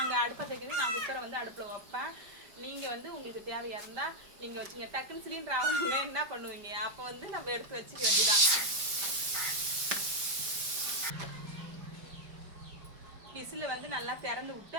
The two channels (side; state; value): left; late; 5.1 ms